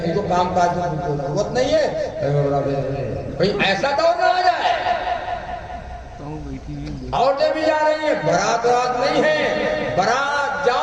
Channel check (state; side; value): identical; both; correlation 1.00